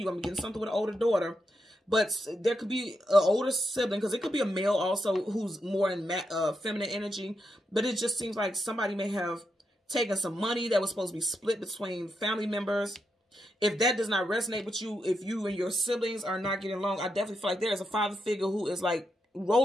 you, I'm getting something with an older daughter. But there could be an older sibling, because it could be a male also who's more in feminine energy. But it just seems like somebody may have taken some money that was supposed to be split between family members. If that does not resonate with you, if you and your siblings are not getting along, I definitely feel like there is a father figure who is like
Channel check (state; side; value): normal; both; correlation 0.83